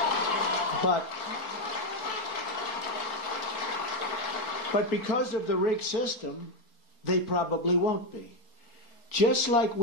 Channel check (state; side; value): late; right; 4.3 ms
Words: But because of the rigged system, they probably won't be. Just like